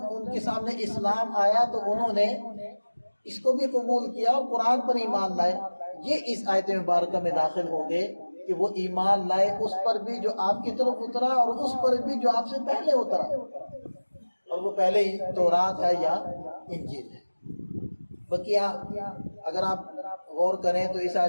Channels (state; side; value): inverted; both; correlation -1.00